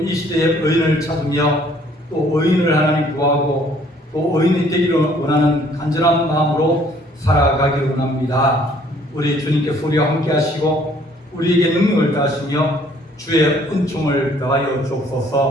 시대의 의인을 찾으며 또 의인을 하나님 구하고 또 의인이 되기를 원하는 간절한 마음으로 살아가기를 원합니다. 우리 주님께서 우리와 함께 하시고 우리에게 능력을 다하시며 주의 은총을 더하여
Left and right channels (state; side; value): normal; both; correlation 0.60